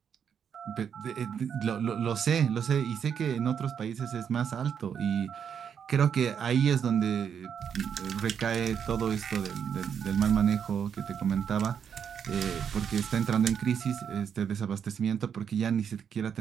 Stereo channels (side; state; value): left; quieter; 7.7 dB